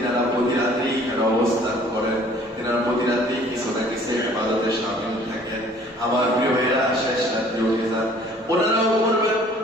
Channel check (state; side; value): normal; both; correlation 0.54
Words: প্রতি রাতেই এখানে অবস্থান করেন, তিনারা প্রতি রাতেই কিছু না কিছু ইবাদতে শামিল থাকেন। আমার প্রিয় ভাইয়েরা, শেষ রাত্রে উঠে যান, ওনারাও করবেন,